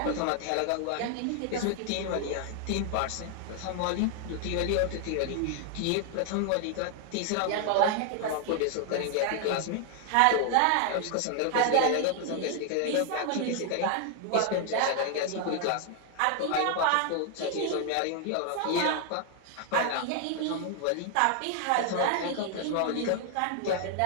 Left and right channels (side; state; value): both; different; correlation 0.00